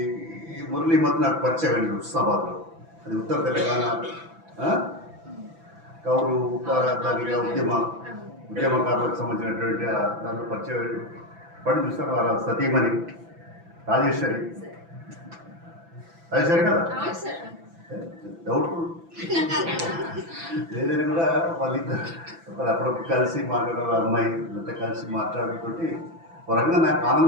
మురళీ మధ్య నాకు పరిచయం అండి హుస్నాబాద్లో. అది ఉత్తర తెలంగాణ కౌలు దానిగా ఉద్యమకారులకు సంబంధించినటువంటి దాంట్లో పరిచయం పడి చూస్తాను. వారు సతీమణి రాజేశ్వరి కదా, డౌట్ఫుల్ ఏదైనా కూడా వాళ్ళిద్దరు అప్పుడప్పుడు కలిసి మాట్లాడారు. అమ్మాయి ఇంత కలిసి మాట్లాడుతోటి వరంగా నాకు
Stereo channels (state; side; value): late; left; 6.0 ms